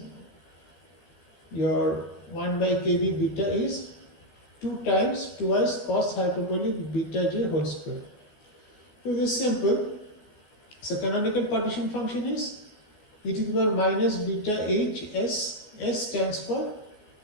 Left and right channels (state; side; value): late; right; 15 ms